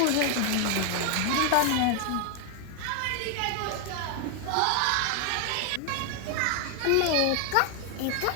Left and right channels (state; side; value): different; both; correlation 0.00